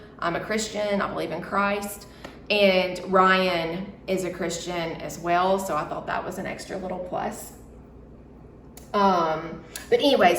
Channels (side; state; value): both; identical; correlation 1.00